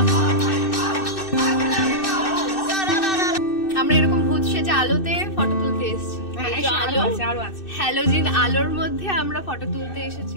আমরা এরকম ভূত সেজে আলোতে ফটো তুলতে এসেছি। হ্যালোজিন আলোর মধ্যে আমরা ফটো তুলতে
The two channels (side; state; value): right; late; 2.6 ms